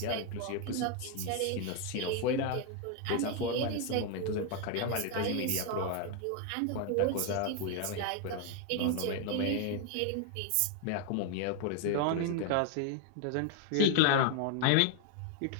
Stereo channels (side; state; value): both; different; correlation 0.00